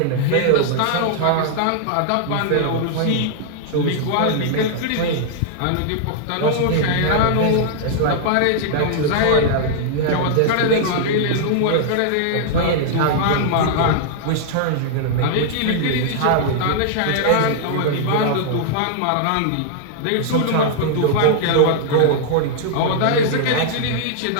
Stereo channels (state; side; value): different; both; correlation -0.01